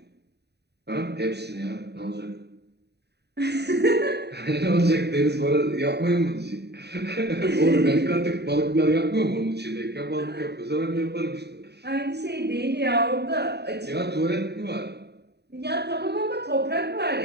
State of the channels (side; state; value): left; late; 0.48 ms